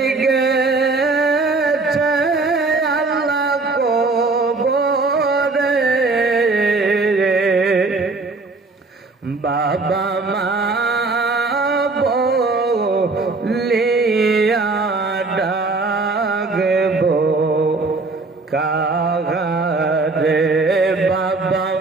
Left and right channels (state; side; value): quieter; left; 3.7 dB